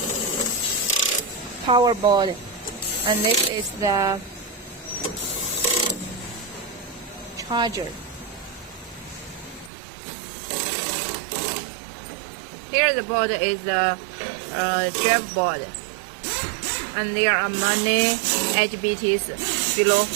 power board, and this is the charger. Here the board is the drive board, and there are many HBTs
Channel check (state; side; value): drops out; left; at 9.7 s